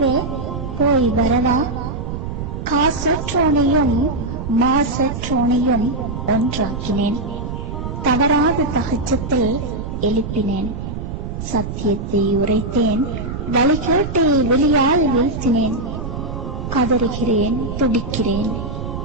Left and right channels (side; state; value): right; noise; rumble, 6 dB below the sound